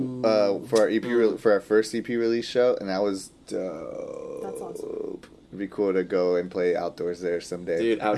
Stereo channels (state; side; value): identical; both; correlation 1.00